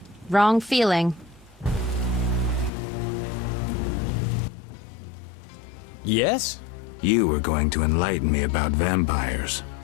Wrong feeling. Yes? You were going to enlighten me about vampires.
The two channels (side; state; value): right; drops out; at 2.7 s